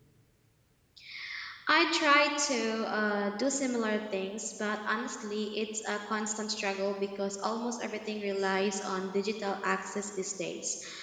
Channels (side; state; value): both; identical; correlation 1.00